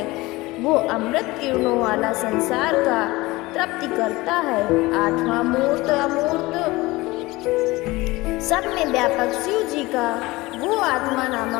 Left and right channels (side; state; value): right; quieter; 20.8 dB